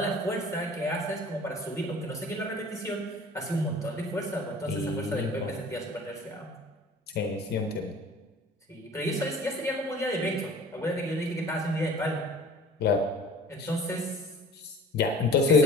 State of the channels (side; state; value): both; normal; correlation 0.45